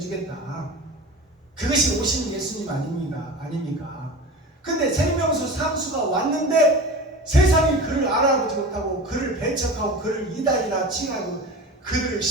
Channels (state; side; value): normal; both; correlation 0.33